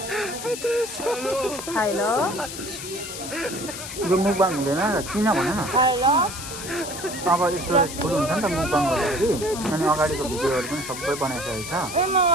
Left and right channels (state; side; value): noise; left; hiss, 9 dB below the sound